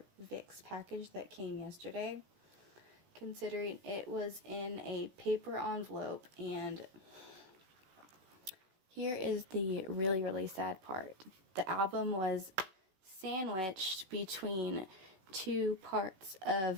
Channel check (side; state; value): left; late; 16 ms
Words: VIXX package that came yesterday, considering it was in a paper envelope. And here is the really, really sad part. The album was sandwiched between two parts